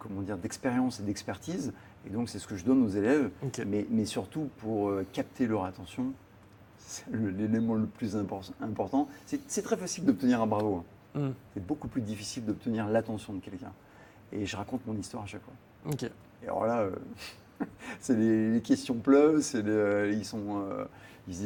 d'expérience et d'expertise. Et donc c'est ce que je donne aux élèves, mais surtout pour capter leur attention. C'est l'élément le plus important. C'est très facile d'obtenir un bravo. C'est beaucoup plus difficile d'obtenir l'attention de quelqu'un. Et je raconte mon histoire à chaque fois. Et alors là, c'est les questions pleuvent, ils se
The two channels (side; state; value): both; identical; correlation 1.00